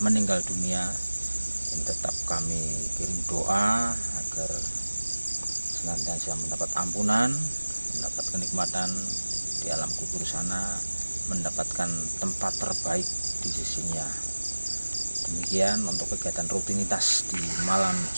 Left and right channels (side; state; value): both; inverted; correlation -1.00